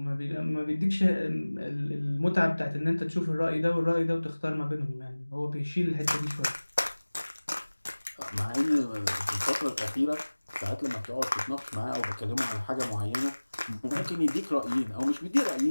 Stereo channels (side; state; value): both; inverted; correlation -1.00